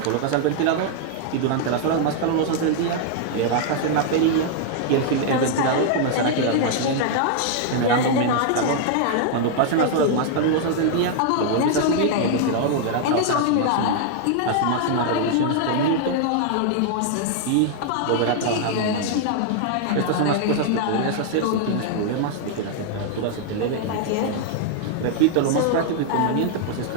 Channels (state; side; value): different; both; correlation 0.00